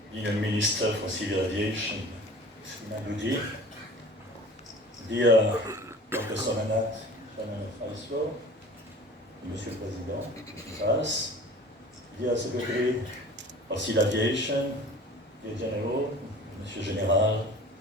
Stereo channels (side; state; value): both; normal; correlation 0.43